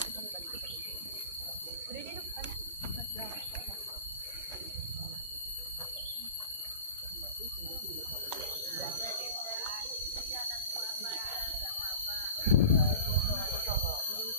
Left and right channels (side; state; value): both; inverted; correlation -0.36